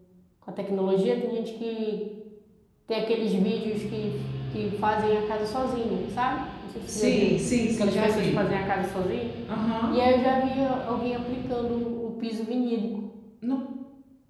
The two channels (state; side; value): identical; both; correlation 1.00